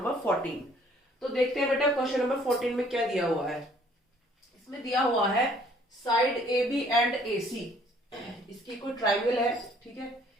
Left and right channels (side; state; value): both; normal; correlation 0.59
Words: 14। तो देखते हैं बेटा क्वेश्चन नंबर 14 में क्या दिया हुआ है। इसमें दिया हुआ है side A B and A C. इसकी कोई ट्राइंगल है, ठीक है।